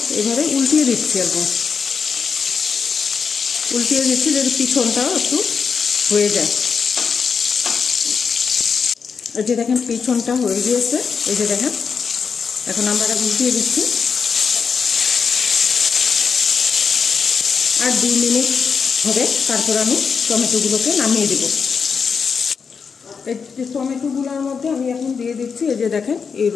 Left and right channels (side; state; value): right; quieter; 5.9 dB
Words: এইভাবে উল্টিয়ে দিচ্ছি, একদম উল্টিয়ে দিচ্ছি যদি পিছনটাও একটু হয়ে যায়। এই যে দেখেন পিছনটা হয়ে গিয়েছে, এই যে দেখেন এখন আমরা উল্টিয়ে দিচ্ছি। আর 2 মিনিট হবে, তারপর আমি টমেটোগুলোকে নামিয়ে দেব। এই যে টমেটোগুলোর মধ্যে আমি এখন দিয়ে দিচ্ছি এই যে দেখেন এই